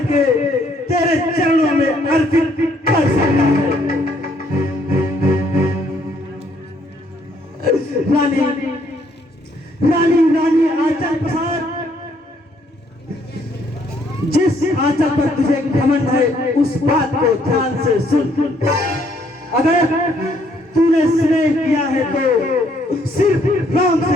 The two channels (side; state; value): both; normal; correlation 0.67